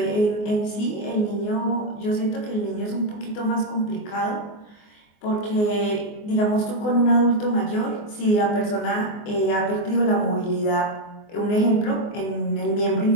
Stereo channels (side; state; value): right; late; 24 ms